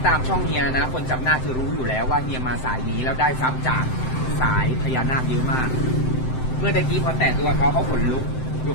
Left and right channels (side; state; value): right; late; 7.8 ms